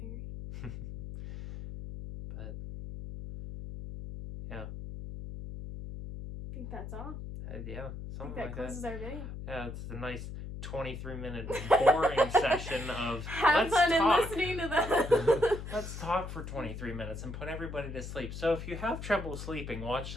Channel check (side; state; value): left; noise; hum, 8 dB below the sound